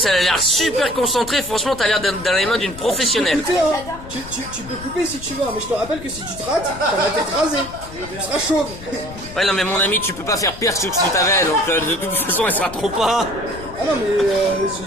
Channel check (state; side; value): noise; left; rumble, 15 dB below the sound